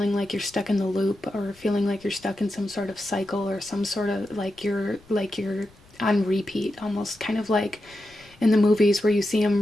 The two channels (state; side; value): noise; left; rumble, 27 dB below the sound